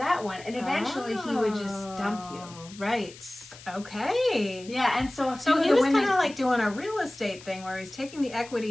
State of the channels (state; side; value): noise; left; hiss, 18 dB below the sound